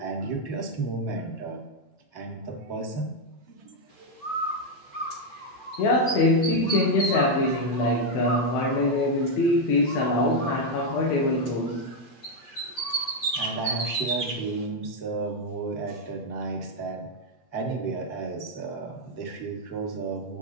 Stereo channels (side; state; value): right; late; 7.8 ms